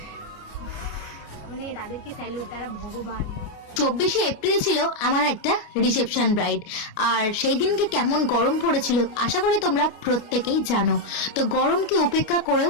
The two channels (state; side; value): late; right; 29 ms